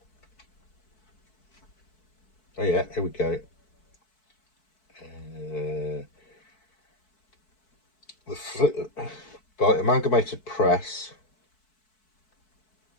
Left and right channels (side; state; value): right; late; 4.6 ms